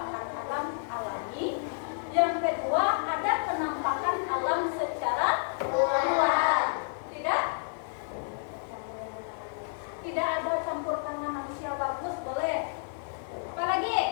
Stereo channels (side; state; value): right; silent; 58 dB below the other